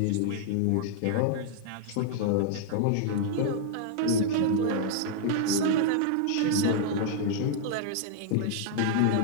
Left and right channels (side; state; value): both; different; correlation -0.01